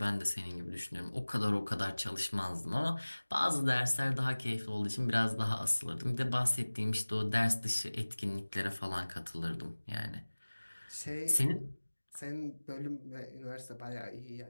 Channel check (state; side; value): inverted; both; correlation -1.00